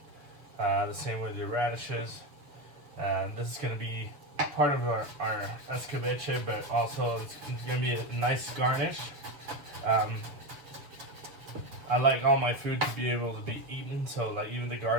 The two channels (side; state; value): left; late; 6.9 ms